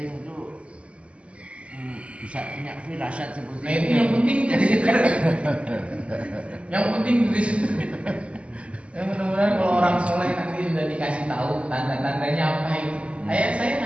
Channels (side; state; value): left; late; 0.059 ms